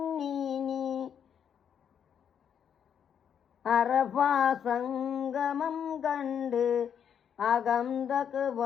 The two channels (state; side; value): quieter; right; 8.2 dB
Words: അറഫ സംഗമം കണ്ട് അകം